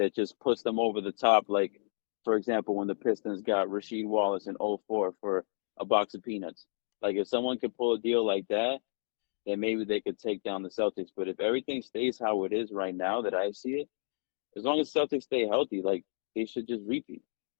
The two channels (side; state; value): right; silent; digital silence